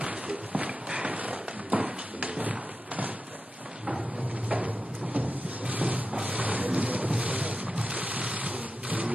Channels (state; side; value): normal; both; correlation 0.90